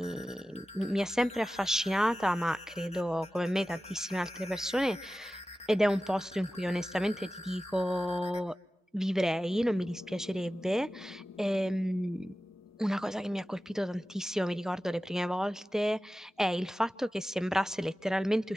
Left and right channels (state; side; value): normal; both; correlation 0.95